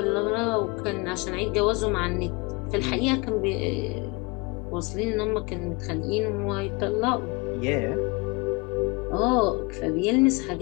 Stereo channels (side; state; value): right; quieter; 27.5 dB